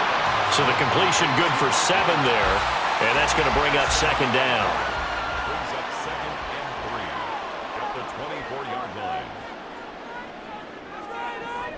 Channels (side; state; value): both; identical; correlation 1.00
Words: So the completion good for 7 there, and that's going to bring up 2nd down. Brings up 2nd and 3 at the 24-yard line.